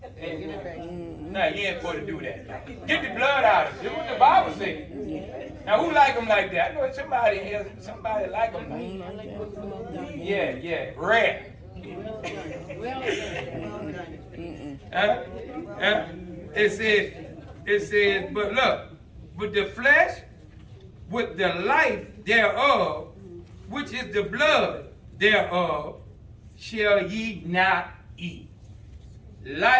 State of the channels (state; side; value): identical; both; correlation 1.00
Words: Now you ain't supposed to do that. Get the blood out of it. Do what the Bible says. Now who like them like that? I know somebody here, somebody like them like that. Yeah, rare. It says, but look, with the flesh, with the life thereof, which is the blood thereof, shall ye not eat.